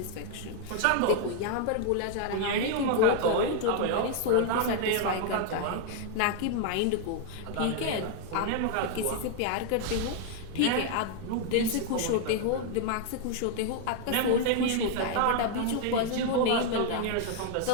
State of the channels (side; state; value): both; different; correlation 0.00